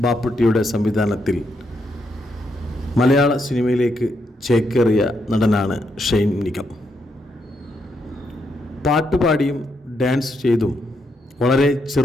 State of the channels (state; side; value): normal; both; correlation 0.79